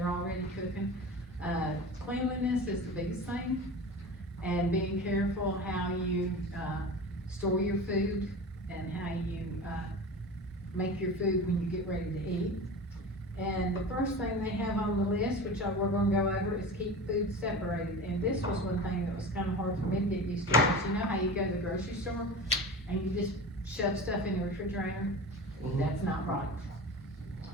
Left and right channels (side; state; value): both; normal; correlation 0.32